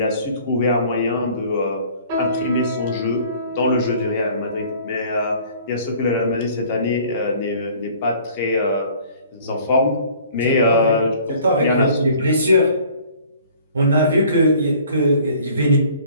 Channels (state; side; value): inverted; both; correlation -0.52